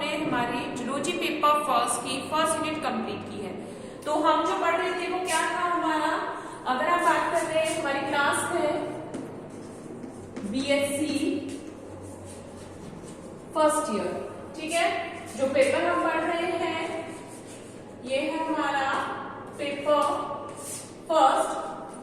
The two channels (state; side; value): identical; both; correlation 1.00